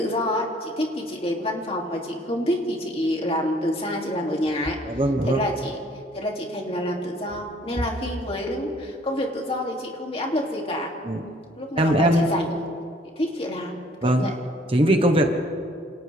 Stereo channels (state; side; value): normal; both; correlation 0.59